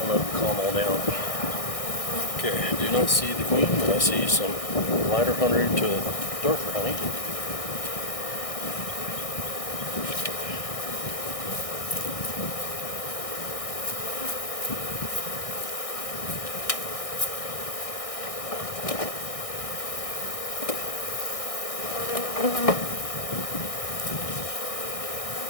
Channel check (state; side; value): late; right; 1.6 ms